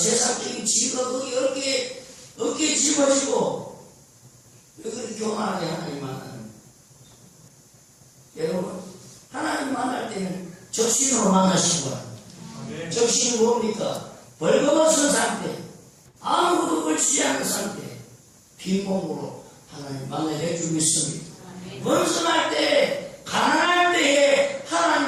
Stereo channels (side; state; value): both; identical; correlation 1.00